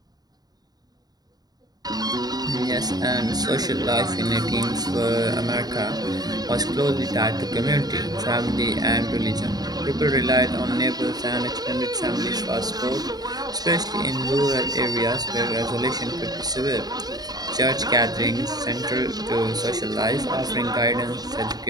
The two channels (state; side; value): late; left; 0.19 ms